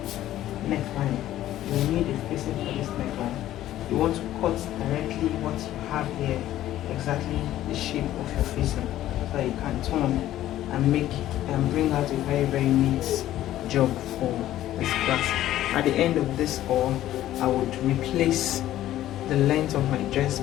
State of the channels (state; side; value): quieter; right; 13.4 dB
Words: neckline. You will need a facing for this neckline. You want to cut directly what you have here, exactly the shape of your facing, so that you can turn and make and bring out a very neat job for this class. At the end of this haul, I would replace the length of my dress